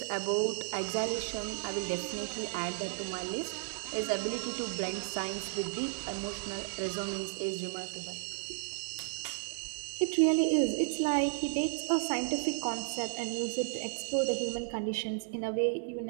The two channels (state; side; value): silent; left; digital silence